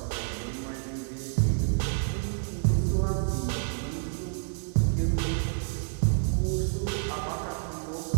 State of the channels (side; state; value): left; silent; 59 dB below the other